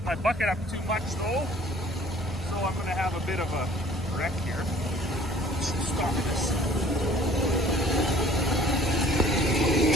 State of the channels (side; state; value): both; normal; correlation 0.53